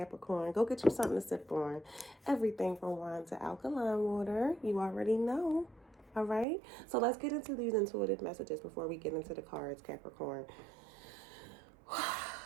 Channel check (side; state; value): left; drops out; at 6.5 s